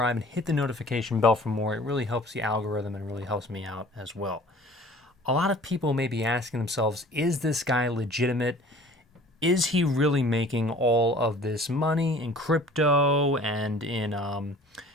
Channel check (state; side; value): normal; both; correlation 0.48